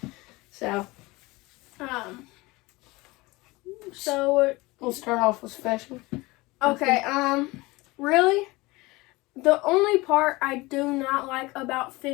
So we'll start off with fishing. Okay, really? The only part I do not like about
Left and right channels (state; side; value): quieter; right; 22.1 dB